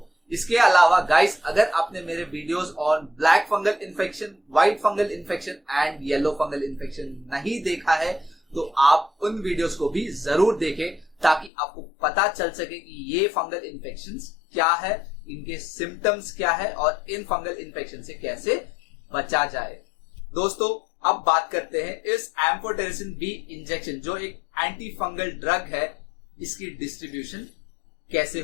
इसके अलावा गाइस, अगर आपने मेरे videos on black fungal infection, white fungal infection and yellow fungal infection नहीं देखा है तो आप उन वीडियोस को भी जरूर देखें ताकि आपको पता चल सके कि ये फंगल इन्फेक्शंस क्या है, इनके सिम्टम्स क्या है और इन फंगल इन्फेक्शन से कैसे बचा जाए। दोस्तों अब बात करते हैं इस एम्फोटेरिसिन बी इंजेक्शन जो एक एंटी फंगल ड्रग है, इसकी डिस्ट्रीब्यूशन कैसे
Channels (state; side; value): drops out; right; at 11.5 s